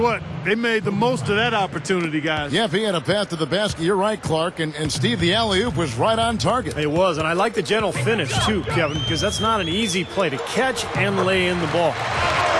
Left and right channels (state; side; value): identical; both; correlation 1.00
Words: they made the most of that opportunity, guys. Yeah, if he had a path to the basket, you're right, Clark. And Steve, the alley-oop was right on target. It was, and I like the gentle finish, too, Kevin, because that's not an easy play to catch and lay in the ball.